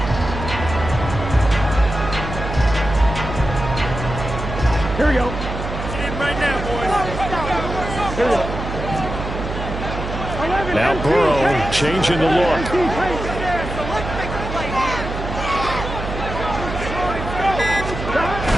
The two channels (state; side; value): noise; right; hum, 6 dB below the sound